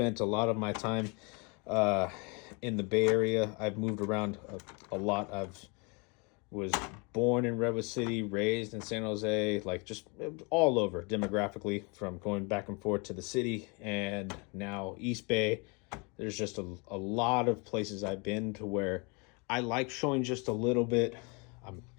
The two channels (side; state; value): right; quieter; 31.4 dB